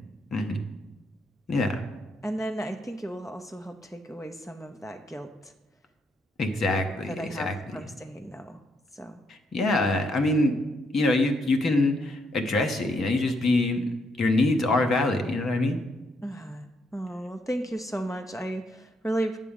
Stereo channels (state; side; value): normal; both; correlation 0.75